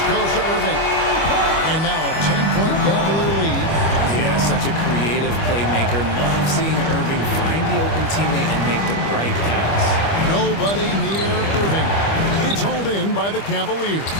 goes to Irving. And now a 10-point Cavalier lead. Yeah, such a creative playmaker. Love seeing Irving find the open teammate and make the right pass. Nobody near Irving. It's hauled in by the Cavaliers.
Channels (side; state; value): right; late; 25 ms